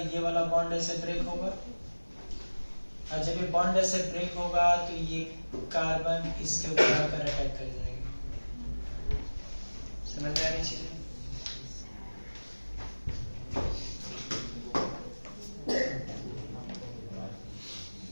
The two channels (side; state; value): both; inverted; correlation -1.00